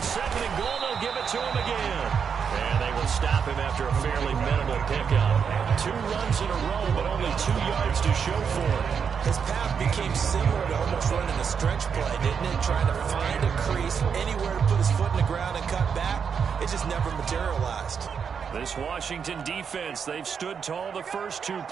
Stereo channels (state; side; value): quieter; left; 6.7 dB